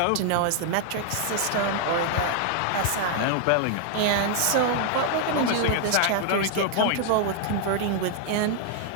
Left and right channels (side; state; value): both; different; correlation 0.00